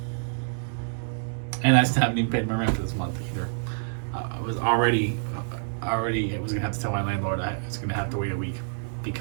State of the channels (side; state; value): left; silent; digital silence